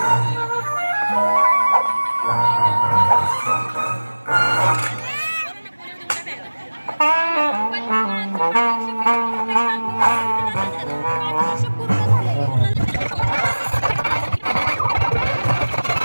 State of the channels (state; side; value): inverted; both; correlation -1.00